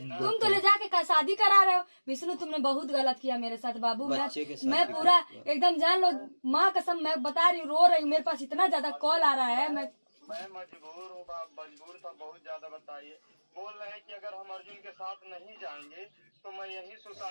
तुम तो ले जाके शादी करा रहे हो। विष्णु तुमने बहुत गलत किया मेरे साथ बाबू। मैं पूरा एकदम जान लो, माँ कसम मैं बता रही हूँ, रो रही हूँ। मेरे पास इतना ज्यादा कॉल आ रहा है। मैं मजबूर हूँ, मजबूर था बहुत ज्यादा। बताइए, बोल रहे हैं कि अगर हम अर्जुन के साथ नहीं जाएंगे तो मैं यही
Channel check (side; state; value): both; inverted; correlation -1.00